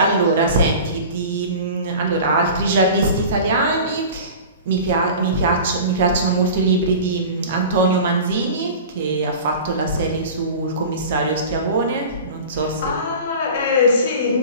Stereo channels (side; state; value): both; inverted; correlation -0.36